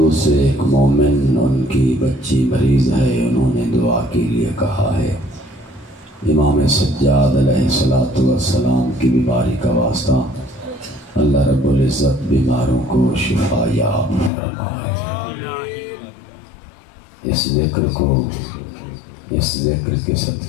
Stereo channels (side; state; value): right; drops out; at 14.3 s